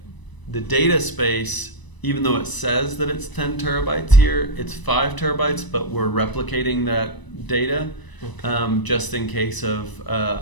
data space, even though it says that it's 10 terabytes here, it's 5 terabytes, but we're replicating that data just in case of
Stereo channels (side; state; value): right; late; 1.0 ms